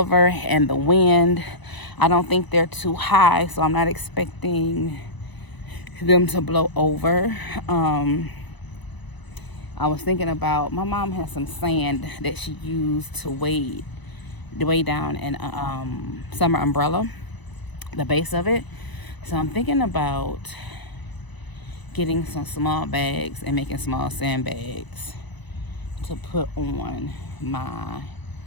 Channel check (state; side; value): late; right; 1.0 ms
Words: and the wind. I don't think they're too high, so I'm not expecting them to blow over. I was thinking about, my mom has some sand that she used to weigh down an summer umbrella, the base of it. So I'm thinking about getting some small bags and making small sandbags to put on my